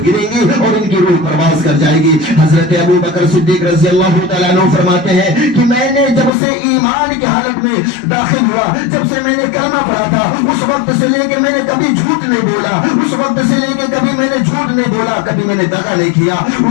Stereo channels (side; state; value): right; drops out; at 6.3 s